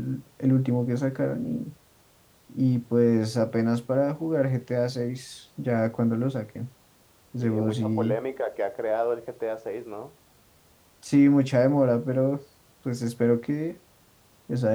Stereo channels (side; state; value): both; identical; correlation 1.00